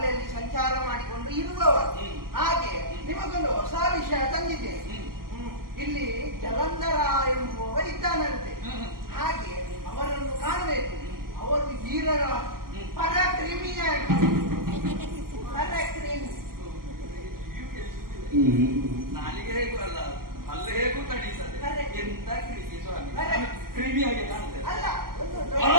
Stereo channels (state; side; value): late; left; 0.92 ms